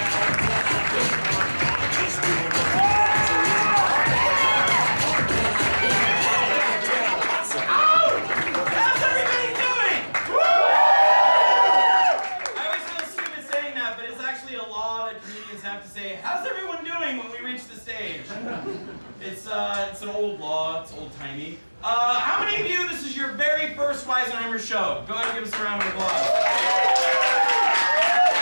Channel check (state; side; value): inverted; both; correlation -1.00